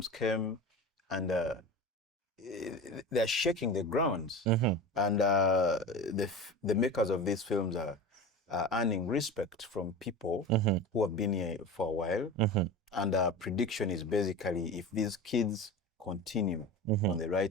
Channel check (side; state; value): both; normal; correlation 0.30